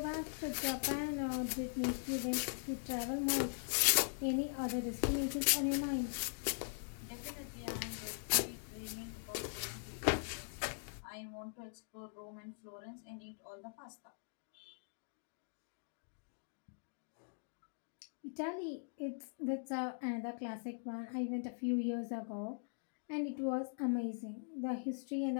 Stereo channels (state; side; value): silent; right; digital silence